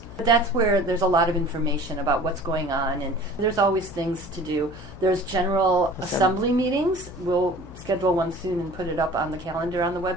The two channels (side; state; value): left; noise; hum, 16 dB below the sound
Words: That's where there's a lot of information about what's going on, and there's always things to do. There's general assembly meetings. We'll schedule one soon and put it up on the calendar on the